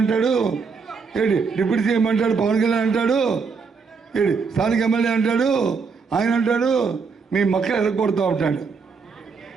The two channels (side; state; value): left; quieter; 5.2 dB